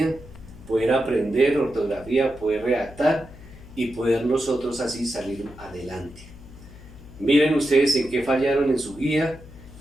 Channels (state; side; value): noise; left; hum, 19 dB below the sound